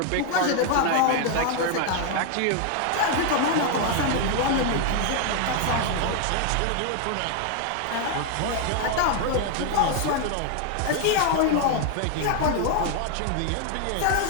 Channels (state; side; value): different; both; correlation 0.00